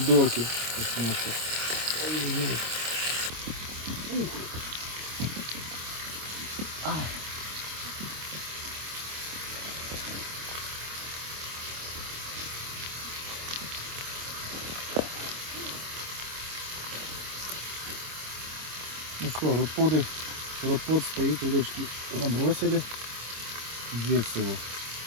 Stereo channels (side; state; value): left; late; 26 ms